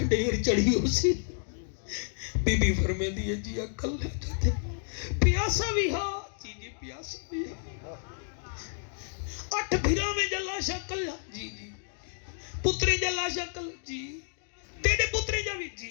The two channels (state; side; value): silent; right; digital silence